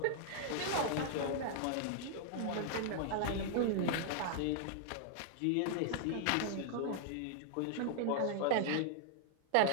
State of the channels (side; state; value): both; different; correlation -0.01